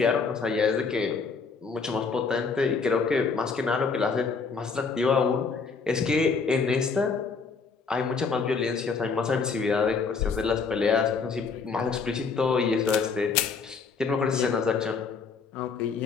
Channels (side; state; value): right; quieter; 5.1 dB